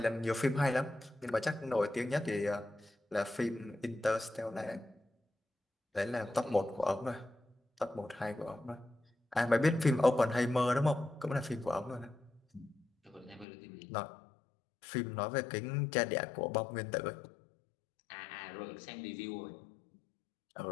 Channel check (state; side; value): drops out; right; at 13.5 s